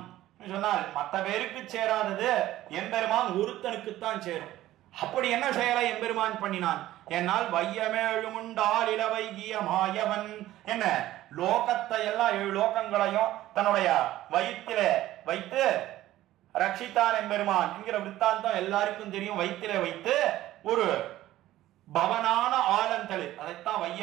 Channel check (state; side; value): quieter; left; 14.8 dB